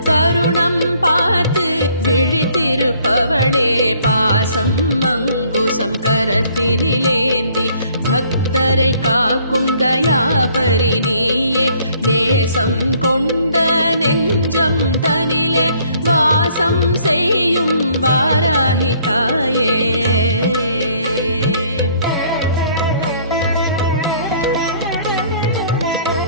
தருணம் பார்த்து விழித்திருப்பவளே பாசம் அங்குசம் கரத்தினிலேந்தி பக்தரை காக்கும் தயாபரி நீயே நேசம் கொண்ட நெஞ்சம் தனிலே வாசம் செய்யும் வாராகி தாயே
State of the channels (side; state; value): both; inverted; correlation -0.61